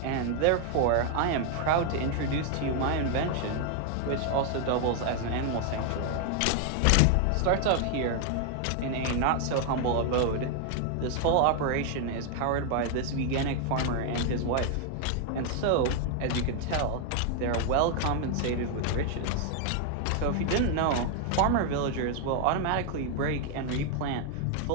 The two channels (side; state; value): both; different; correlation 0.00